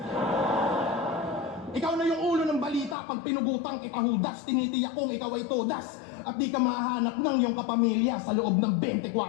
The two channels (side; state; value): right; drops out; at 3.0 s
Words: Ikaw na yung ulo ng balita pag pinugutang kita hudas, tinitiyak kong ikaw ay todas at di ka mahanap ng iyong kapamilya sa loob ng 24